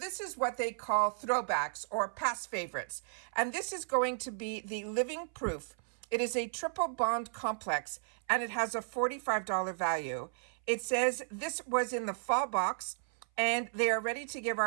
is what they call throwbacks or past favorites. And this is going to be the living proof. It is a triple bond complex, and it has a $45 value. It says this was in the fall box, and they are ready to give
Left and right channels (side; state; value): left; silent; 55 dB below the other